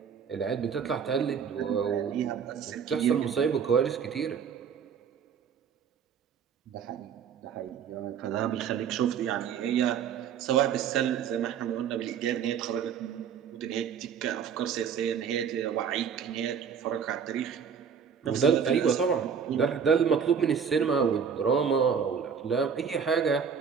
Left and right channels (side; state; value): left; quieter; 7.1 dB